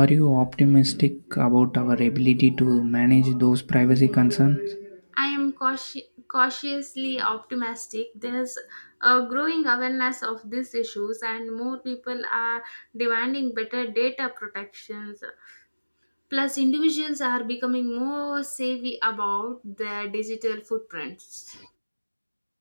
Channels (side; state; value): both; inverted; correlation -1.00